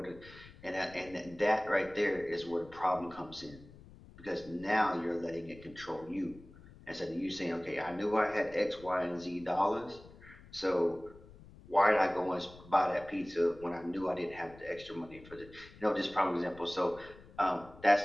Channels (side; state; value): left; noise; rumble, 20 dB below the sound